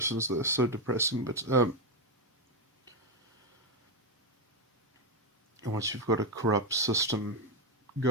they're so depressing, but once you've got a corrupt system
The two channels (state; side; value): normal; both; correlation 0.06